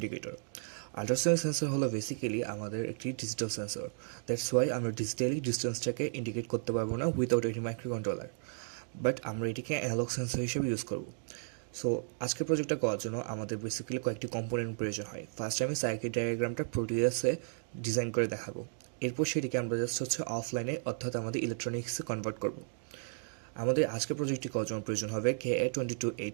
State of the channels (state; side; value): silent; left; digital silence